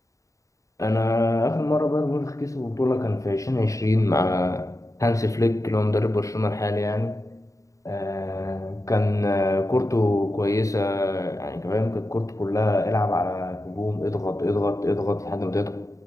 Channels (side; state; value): right; late; 0.16 ms